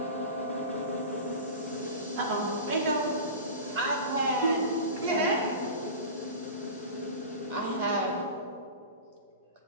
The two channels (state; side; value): inverted; both; correlation -0.31